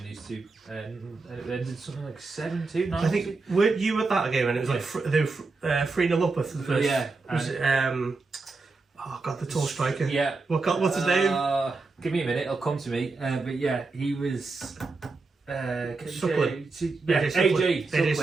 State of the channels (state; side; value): quieter; left; 3.9 dB